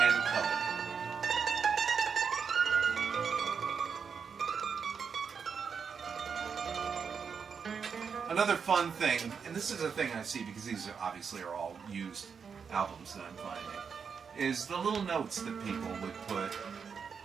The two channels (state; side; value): quieter; left; 6.3 dB